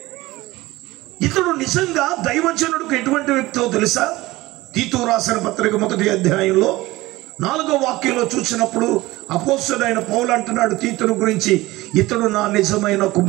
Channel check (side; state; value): left; quieter; 19.1 dB